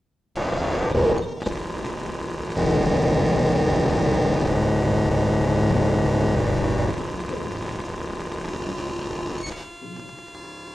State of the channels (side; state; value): both; normal; correlation 0.94